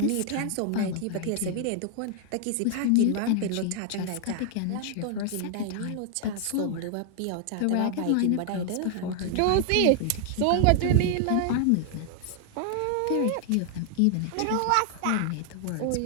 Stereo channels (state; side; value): different; both; correlation 0.00